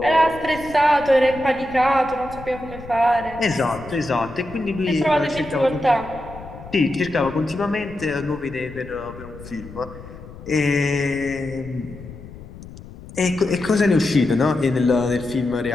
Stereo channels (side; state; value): left; noise; rumble, 15 dB below the sound